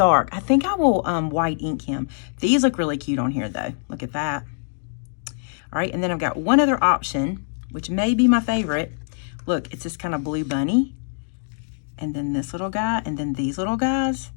I think I will white ink him. These look really cute on here though. Look at that. All right, and then I've got one other option, which may be my favorite. Look, it's this kind of blue bunny. And then this little guy, and then these little guys.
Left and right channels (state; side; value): silent; right; digital silence